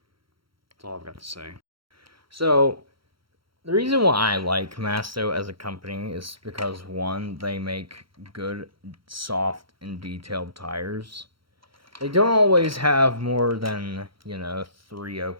That's all I've got to say. So, the reason why I like Masto as a company is because, one, they make good, soft, and detailed tires. They don't always have more than, 3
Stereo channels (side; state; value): left; late; 0.74 ms